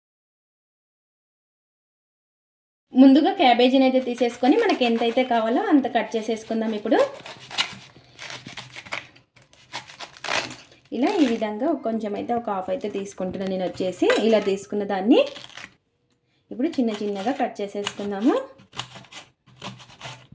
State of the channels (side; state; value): both; identical; correlation 1.00